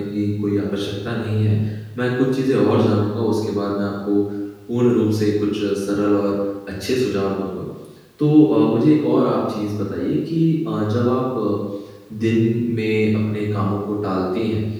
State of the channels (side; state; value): both; identical; correlation 1.00